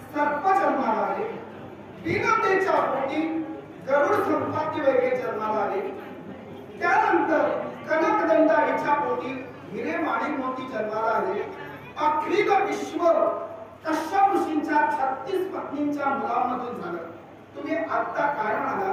सर्प जन्माला आले, दीनतेच्या पोटी गरुड संपाती वगैरे जन्माला आले, त्यानंतर कनकदंडा हिच्या पोटी हिरे माणिक मोती जन्माला आले. अखिल विश्व कश्यप ऋषींच्या 36 पत्नींच्या मुलांमधून झालं. तुम्ही आता काय म्हणाला?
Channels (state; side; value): identical; both; correlation 1.00